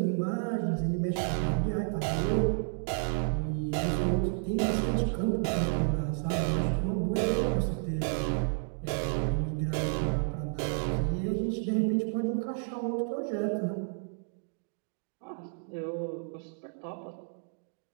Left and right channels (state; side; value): silent; left; 57 dB below the other